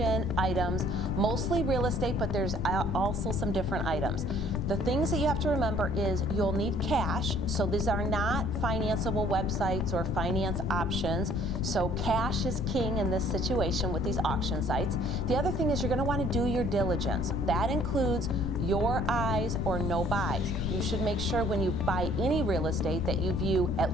items, mostly real estate, but there's also some different items. The things that you have to remember is you'll need cash, so these are not financeable websites or finance options, so cash is king in this situation with these auction sites. The other thing is you're going to want to do your diligence. That includes your eyes or no buys. You should make sure when you buy any real estate that you view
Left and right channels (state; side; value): noise; left; rumble, 2 dB below the sound